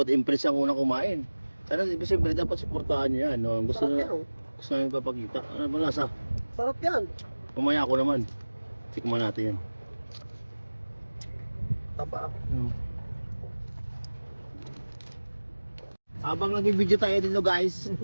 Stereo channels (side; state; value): both; inverted; correlation -1.00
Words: Impress ang unang kumain. Sana siyempre dapat suportahan niyo yan. No? Gusto Sarap na yan oh. gusto namin papakita. Ano ba lasa? Sarap yan. Pumaya ko naman. Tikman natin yan. Taba. Habang nag-video tayo dito guys,